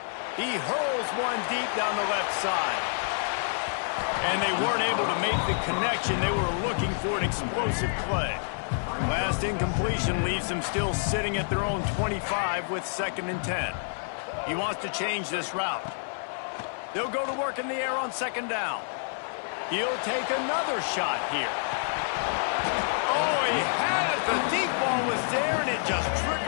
He hurls one deep down the left side. And they weren't able to make the connection. They were looking for an explosive play. Last incompletion leaves them still sitting at their own 25 with 2nd and 10. He wants to change this route. They'll go to work in the air on 2nd down. He'll take another shot here. Oh, he had it. The deep ball was there, and it just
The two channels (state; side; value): silent; right; 59 dB below the other